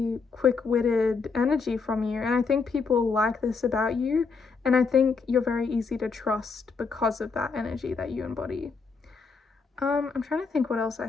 quick-witted energy from you, and I think people like this about you, and I think you're very easy to trust because of that energy that you embody. I'm trying to think what else I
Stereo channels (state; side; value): quieter; right; 4.8 dB